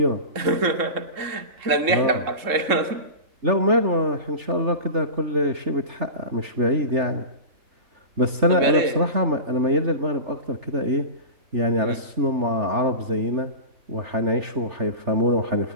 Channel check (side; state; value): left; late; 3.4 ms